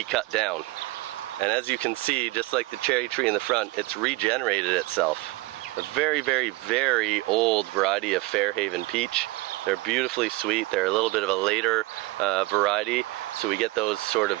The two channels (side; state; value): left; quieter; 21.2 dB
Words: cut down. And as you can see, just like the cherry tree in the front, it's regenerated itself. A very, very, very old variety of Fairhaven peach. They're beautifully sweet. They're a little bit of a later variety, so we get those sort